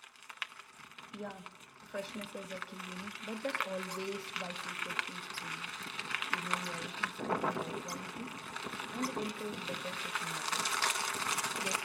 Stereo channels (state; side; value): identical; both; correlation 1.00